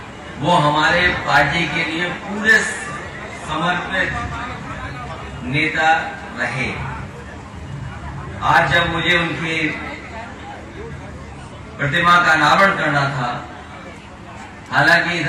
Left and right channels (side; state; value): both; identical; correlation 1.00